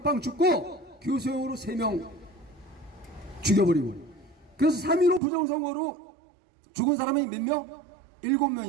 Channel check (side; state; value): left; drops out; at 5.2 s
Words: 죽고 교수형으로 3명 죽여버리고. 그래서 3.15 부정선거로 죽은 사람이 몇 명?